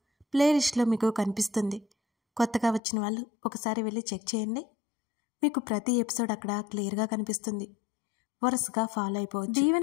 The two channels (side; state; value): right; drops out; at 2.8 s